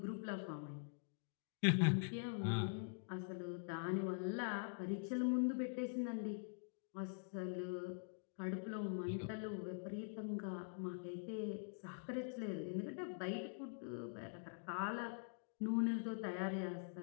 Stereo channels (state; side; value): silent; right; digital silence